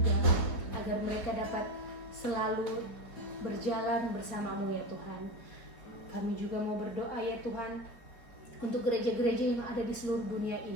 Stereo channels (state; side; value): late; right; 4.6 ms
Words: agar mereka dapat selalu berjalan bersama-Mu ya Tuhan. Kami juga mau berdoa ya Tuhan untuk gereja-gereja yang ada di seluruh dunia